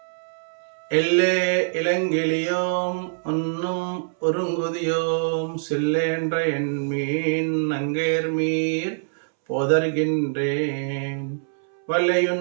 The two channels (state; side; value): silent; left; 63 dB below the other